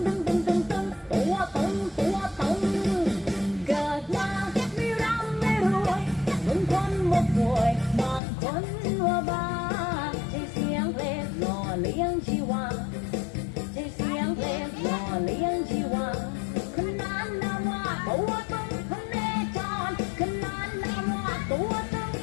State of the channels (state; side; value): drops out; right; at 8.2 s